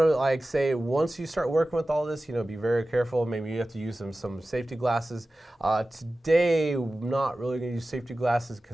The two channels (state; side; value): normal; both; correlation 0.95